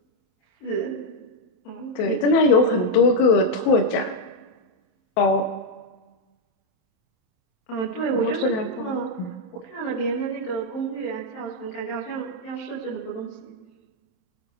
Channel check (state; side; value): late; right; 28 ms